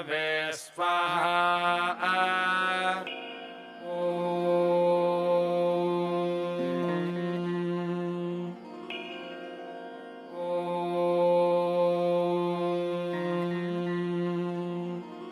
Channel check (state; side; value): identical; both; correlation 1.00